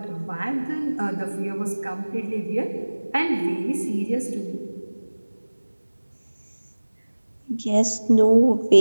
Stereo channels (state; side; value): inverted; both; correlation -1.00